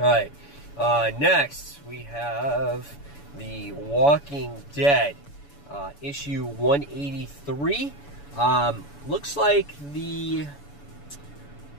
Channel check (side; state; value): right; late; 7.0 ms